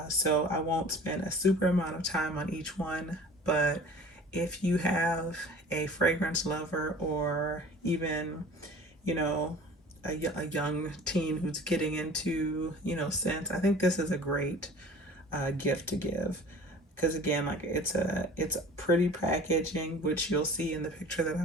So I won't spend a super amount of time on each one, but if you have a fragrance lover or even, you know, a young teen who's getting into, scents, I think this is a great gift to give. Because again, like it's pretty packaging, which you'll see in the picture that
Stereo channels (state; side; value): normal; both; correlation 0.44